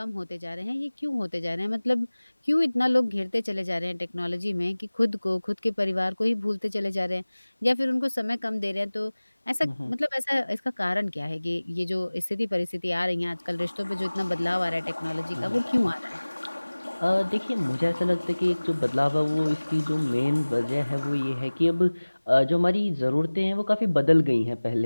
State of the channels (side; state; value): both; inverted; correlation -1.00